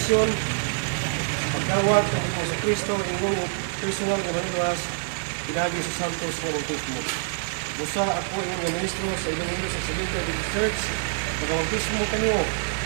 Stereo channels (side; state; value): left; silent; digital silence